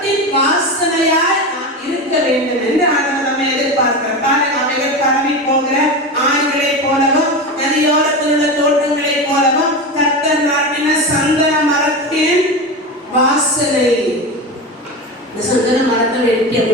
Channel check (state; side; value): normal; both; correlation 0.23